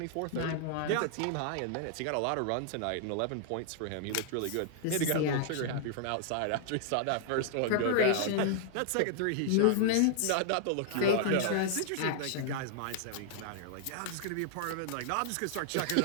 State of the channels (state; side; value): different; both; correlation -0.01